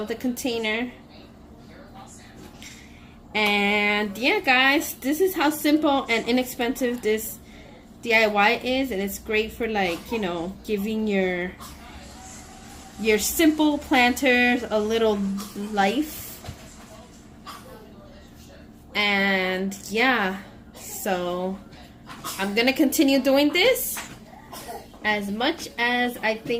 the container. And yeah, guys, this is how simple and inexpensive this DIY is, and it's great for, like, you know, giving your simple planters a little life. And yeah, so I'm gonna continue doing this as much as I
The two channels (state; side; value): identical; both; correlation 1.00